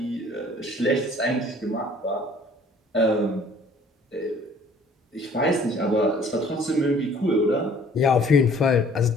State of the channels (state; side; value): normal; both; correlation 0.55